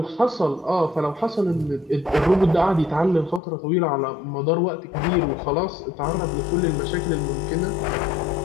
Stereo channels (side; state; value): right; drops out; at 3.4 s